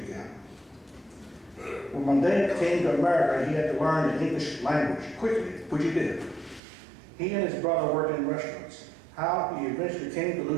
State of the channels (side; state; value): left; drops out; at 6.6 s